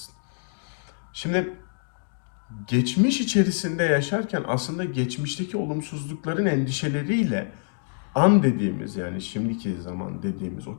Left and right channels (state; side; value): silent; right; digital silence